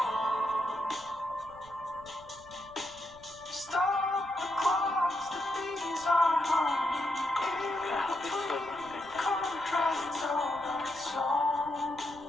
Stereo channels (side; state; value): right; noise; rumble, 22 dB below the sound